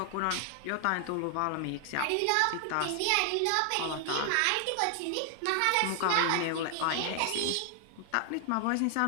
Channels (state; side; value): different; both; correlation 0.00